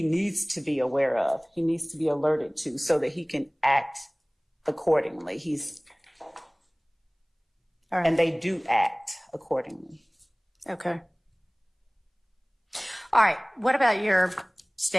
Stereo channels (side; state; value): both; identical; correlation 1.00